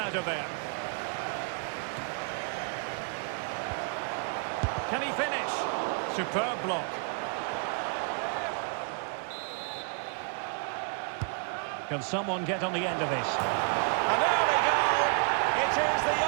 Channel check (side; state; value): left; quieter; 39.9 dB